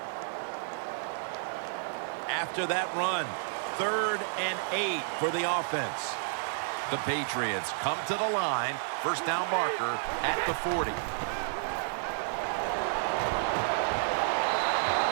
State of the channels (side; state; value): left; silent; digital silence